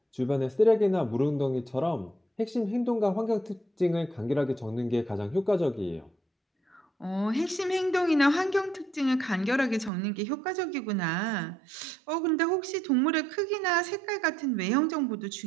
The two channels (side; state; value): left; drops out; at 9.9 s